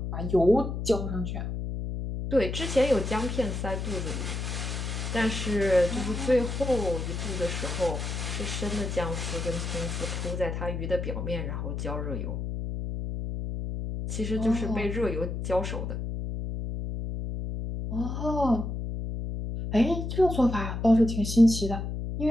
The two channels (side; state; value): left; noise; hum, 4 dB below the sound